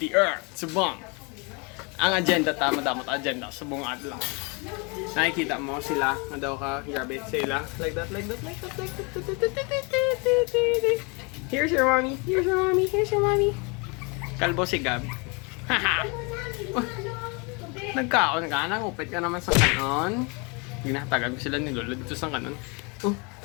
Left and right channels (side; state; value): right; quieter; 31.3 dB